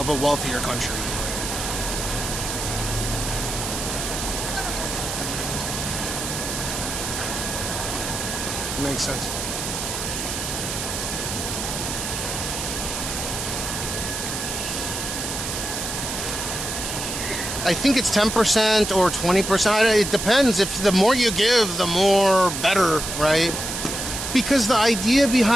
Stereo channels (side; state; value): right; noise; hiss, 4 dB below the sound